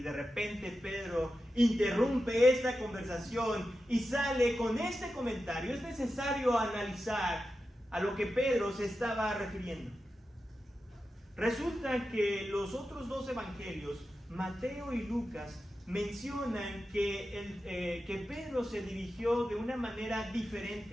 de repente Pedro interrumpe esta conversación y sale con este comentario. Es necesario analizar a lo que Pedro se estaba refiriendo. Resulta que los otros 2 evangelios, Mateo y Lucas, mencionan que Pedro se dirigió de una manera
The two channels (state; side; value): normal; both; correlation 0.91